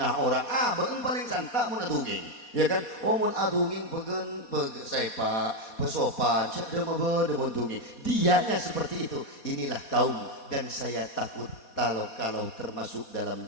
orang. Begen paling santak mun atunging. Ya kan? Mun atunging begen sepak, pesopan, cedema beuntungi. Dianya seperti itu. Inilah kaum dan saya takut kalau termasuk dalam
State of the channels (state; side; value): late; right; 4.2 ms